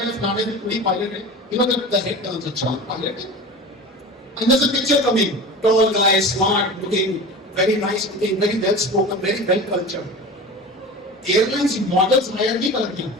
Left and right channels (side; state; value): both; normal; correlation 0.33